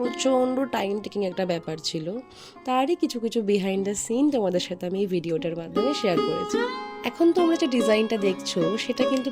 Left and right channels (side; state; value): both; identical; correlation 1.00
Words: টাইম টেকিং একটা ব্যাপার ছিল। তারই কিছু কিছু বিহাইন্ড দ্য সিন তোমাদের সাথে আমি এই ভিডিওটার মাধ্যমে শেয়ার করেছি। এখন তোমরা যে ডিজাইনটা দেখছো সেটা কিন্তু